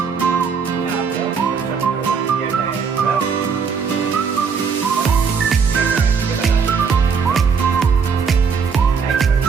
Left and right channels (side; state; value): left; quieter; 5.8 dB